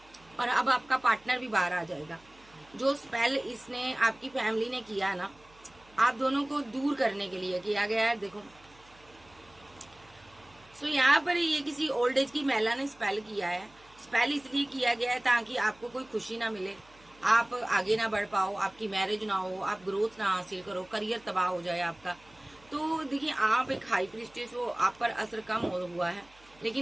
और अब आपका पार्टनर भी बाहर आ जाएगा। जो स्पेल इसने आपकी फैमिली ने किया ना, आप दोनों को दूर करने के लिए किया गया है। देखो, सो यहाँ पर ये किसी ओल्ड एज की महिला ने स्पेल किया है। स्पेल इसलिए किया गया है ताकि आपको कोई खुशी ना मिले, आप आगे ना बढ़ पाओ, आपकी मैरिज ना हो, आप ग्रोथ ना हासिल करो, करियर तबाह हो जाए आपका। तो देखिए, आप एक हाई प्रीस्टेस हो, आप पर असर कम हुआ है,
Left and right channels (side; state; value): right; noise; hum, 28 dB below the sound